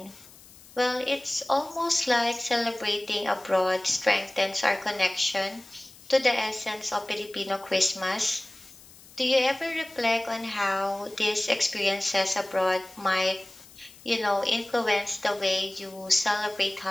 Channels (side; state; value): left; noise; hiss, 22 dB below the sound